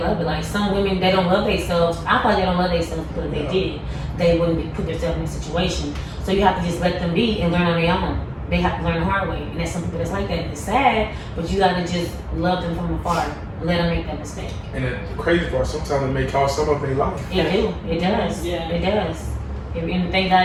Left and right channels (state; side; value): identical; both; correlation 1.00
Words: love it. Like, some women, they don't love themselves. I thought they don't love themselves because they did. They wouldn't put themselves in a situation. So you have to just let them be and learn on their own. They have to learn the hard way. And there's some people that's like that. It's sad, but you gotta just love them from afar and let them make that mistake. And the crazy part, sometimes it may cost some of their life. It do. It does. Yeah. It does. And thank